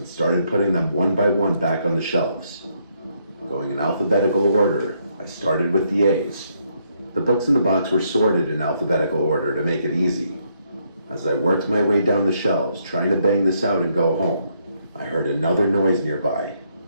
started putting them one by one back on the shelves. Going in alphabetical order, I started with the A's. The books in the box were sorted in alphabetical order to make it easy. As I worked my way down the shelves, trying to bang this out and go home, I heard another noise nearby.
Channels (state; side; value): inverted; both; correlation -0.74